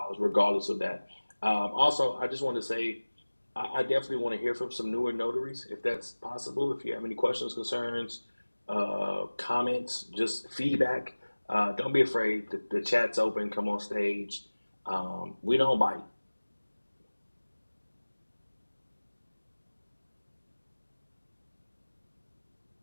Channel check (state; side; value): inverted; both; correlation -1.00